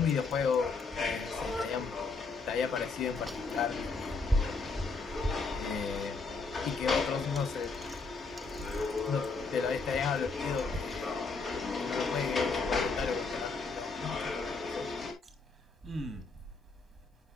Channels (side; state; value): right; quieter; 4.2 dB